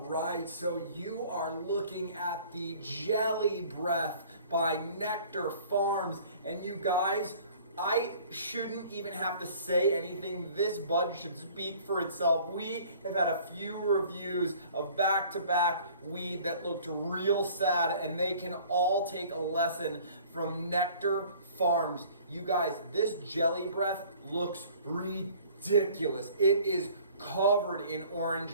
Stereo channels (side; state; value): both; inverted; correlation -0.51